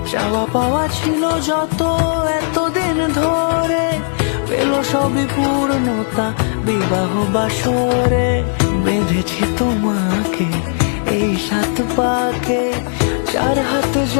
চাওয়া পাওয়া ছিল যত এতদিন ধরে, পেল সবই পূর্ণতা বিবাহ বাসরে। বেঁধেছি তোমাকে এই 7 পাকে, 4 হাত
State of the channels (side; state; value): right; silent; 68 dB below the other